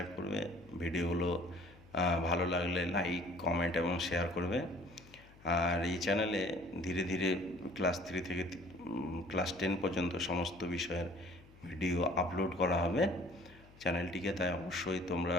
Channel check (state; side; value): noise; left; hum, 23 dB below the sound